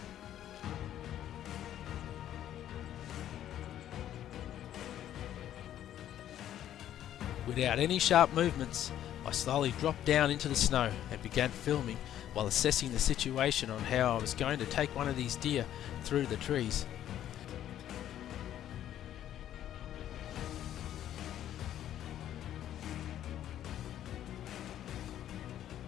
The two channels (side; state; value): right; quieter; 11.4 dB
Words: Without any sharp movements, I slowly dropped down into the snow and began filming while assessing the situation on how I was going to take one of these deer through the trees.